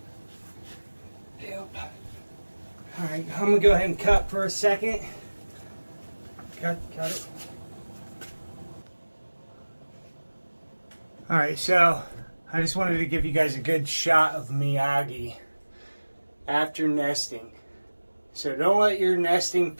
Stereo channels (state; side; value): inverted; both; correlation -1.00